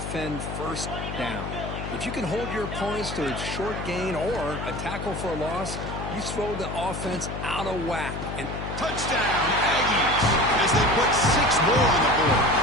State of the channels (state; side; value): noise; left; hum, 6 dB below the sound